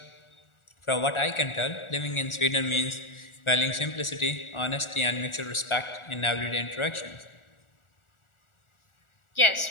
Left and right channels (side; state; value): right; late; 1.4 ms